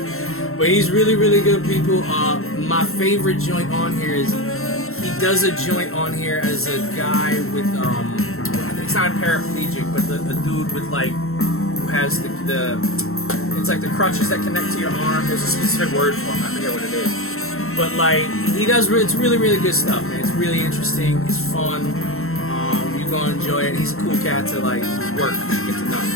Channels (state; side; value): late; right; 0.62 ms